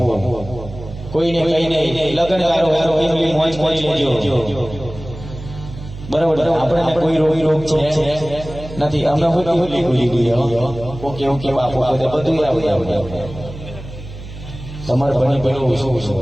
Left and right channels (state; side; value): noise; right; hum, 13 dB below the sound